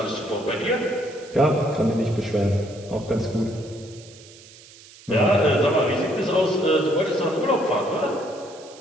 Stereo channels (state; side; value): noise; right; hiss, 21 dB below the sound